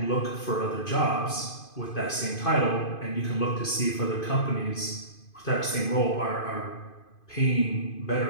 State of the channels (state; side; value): late; right; 2.5 ms